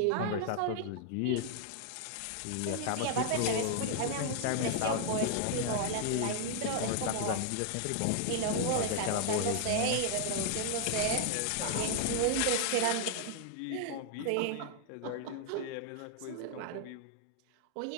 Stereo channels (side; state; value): both; different; correlation 0.00